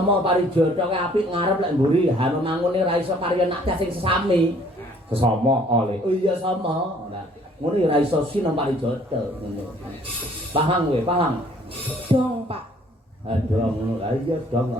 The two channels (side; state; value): both; normal; correlation 0.59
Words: parijata ki apik ngarep lek mburi hanu mangune ra iso kari anak sing sesami. Sesama oleh. Oh iya sama. Ora ngono ya ra iso sinama parijata ngono. Paham kowe, paham? Dong, Pak. Dong ngono. Lah iya dong